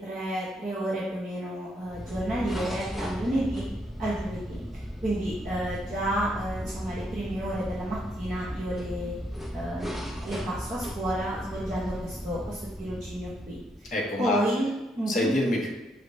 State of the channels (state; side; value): normal; both; correlation 0.76